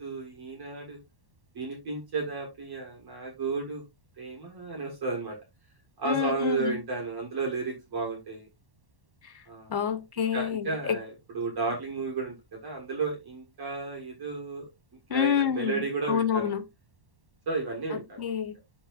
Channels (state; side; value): late; left; 1.1 ms